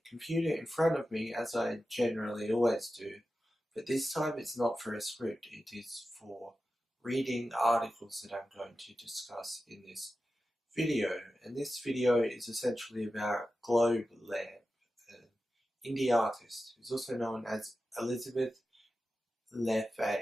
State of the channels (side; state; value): both; normal; correlation 0.93